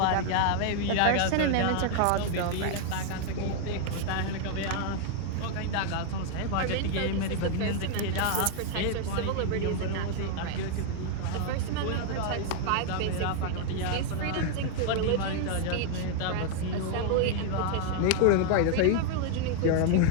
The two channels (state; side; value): different; both; correlation 0.00